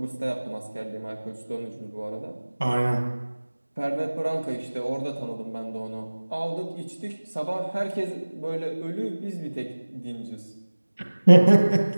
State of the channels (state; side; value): inverted; both; correlation -1.00